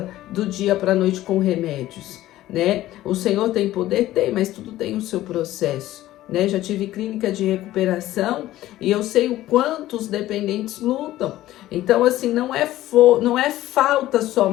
do dia para a noite com remédios, né? O Senhor tem poder? Tem, mas tudo tem o seu processo, né? Já tive clínica de recuperação e eu sei o quanto os dependentes lutam. Então, assim, não é falta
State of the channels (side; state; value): right; quieter; 15.0 dB